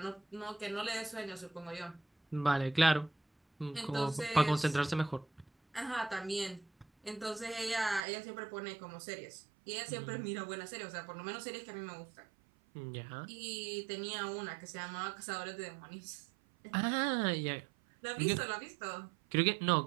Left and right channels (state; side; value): drops out; left; at 8.0 s